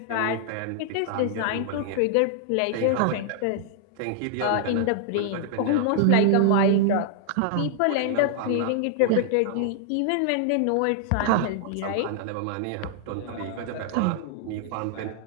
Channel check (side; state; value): both; different; correlation -0.01